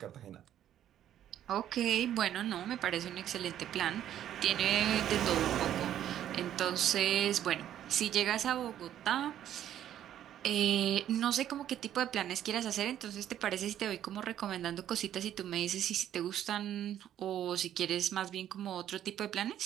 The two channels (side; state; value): left; quieter; 11.1 dB